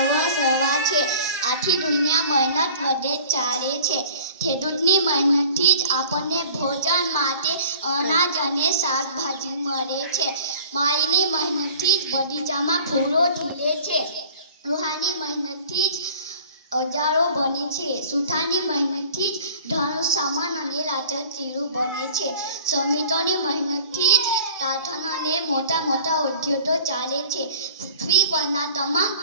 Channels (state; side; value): inverted; both; correlation -0.46